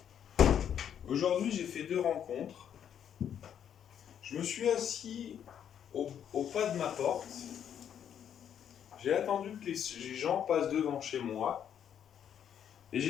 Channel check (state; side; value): quieter; right; 9.1 dB